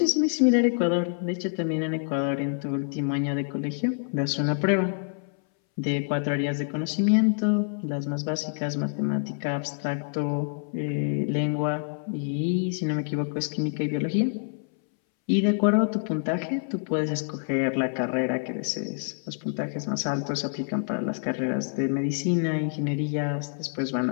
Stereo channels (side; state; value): right; silent; 60 dB below the other